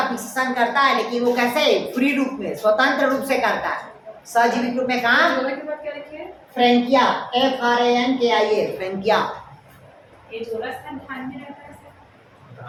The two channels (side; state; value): both; identical; correlation 1.00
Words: फिक्सेशन करता है, लेकिन वो कैसे? फ्री रूप में, स्वतंत्र रूप से करता है। सहजीवी के रूप में कहाँ? Frankia, FRANKIA, Frankia.